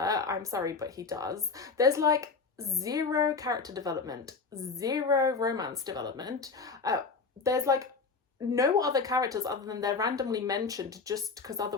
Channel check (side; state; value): right; quieter; 4.6 dB